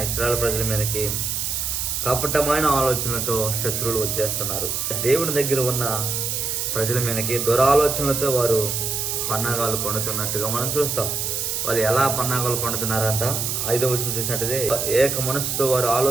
ఇశ్రాయేలు ప్రజల మీదకి కపటమైన ఆలోచనలతో శత్రువులు వచ్చేస్తున్నారు. దేవుని దగ్గర ఉన్న ప్రజల మీదకి దురాలోచనలతో వారు పన్నాగాలు పండుతున్నట్టుగా మనం చూస్తాం. వాళ్ళు ఎలా పన్నాగాలు పండుతున్నారంట? 5వ వచనం చూసినట్టయితే, ఏక మనసుతో వారు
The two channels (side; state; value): right; noise; hiss, 1 dB below the sound